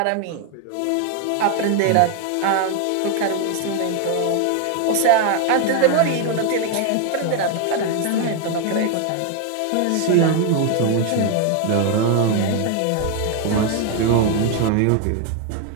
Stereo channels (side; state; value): both; different; correlation 0.01